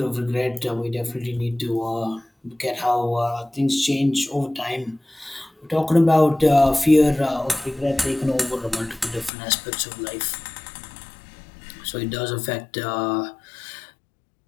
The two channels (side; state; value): right; drops out; at 9.3 s